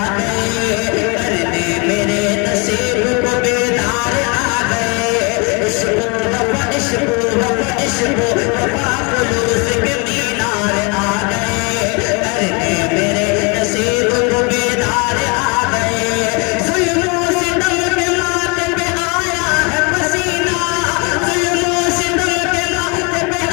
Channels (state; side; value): quieter; right; 31.2 dB